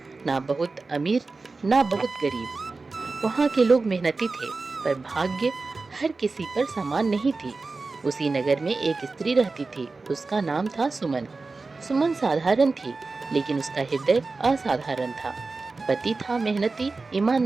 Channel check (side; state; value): left; quieter; 3.8 dB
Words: ना बहुत अमीर ना बहुत गरीब। वहाँ के लोग मेहनती थे, पर भाग्य हर किसी पर समान नहीं थी। उसी नगर में एक स्त्री रहती थी, उसका नाम था सुमन। सुमन साधारण थी, लेकिन उसका हृदय असाधारण था। पति था मेहनती,